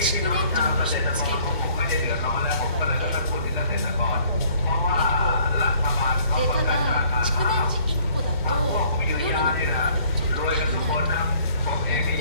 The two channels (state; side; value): inverted; both; correlation -0.59